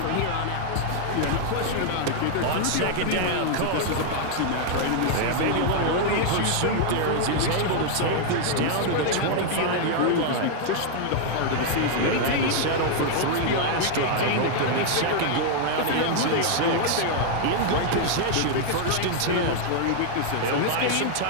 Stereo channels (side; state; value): both; different; correlation 0.00